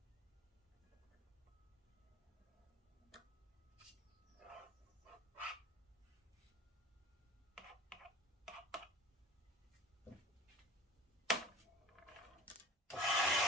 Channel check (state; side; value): normal; both; correlation 0.41